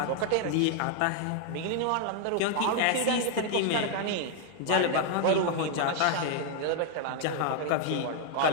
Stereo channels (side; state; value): both; different; correlation 0.00